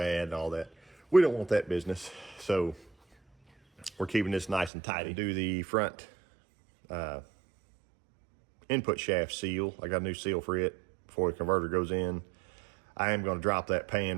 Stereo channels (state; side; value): drops out; left; at 4.7 s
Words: and all that. We don't want that business. So we're keeping this nice and tidy. Do the front input shaft seal. I got a new seal for it before the converter goes in. I am gonna drop that pan